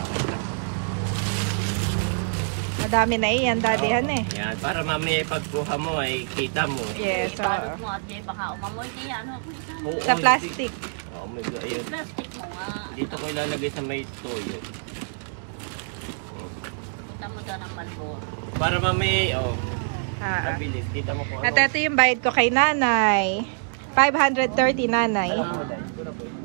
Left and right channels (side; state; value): left; silent; digital silence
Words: Madami na iyan, Daddy, eh. Yan, para mamaya pagkuha mo ay kita mo. Yes, Ibalot mo at may baka umamoy kaya ano? Oo, Sa plastic. Oh my God, ayun. Plastic mo nga. Dito ko ilalagay sa may toyo. Kita mo sana ng Malboro. Para mamaya, mabilis. Kita mo kung At ano. ito yung bayad ko kay nanay. 530, nanay.